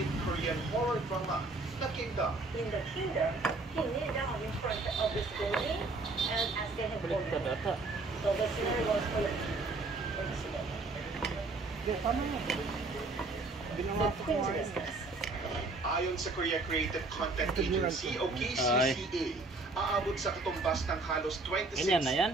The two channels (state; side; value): quieter; left; 3.3 dB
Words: Korean horror drama na Kingdom. In the kingdom, he kneeled down in front of this building and asked him for Baliktad ata. So the scenario was full of But coincidence. Ayon sa Korea Creative Content Agency o KCCA, aabot sa katumbas ng halos 26 Ganyan na yan?